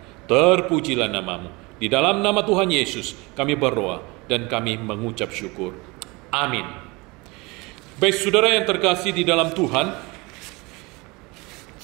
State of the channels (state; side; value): quieter; left; 25.2 dB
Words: Terpujilah nama-Mu. Di dalam nama Tuhan Yesus kami berdoa dan kami mengucap syukur. Amin. Baik saudara yang terkasih di dalam Tuhan,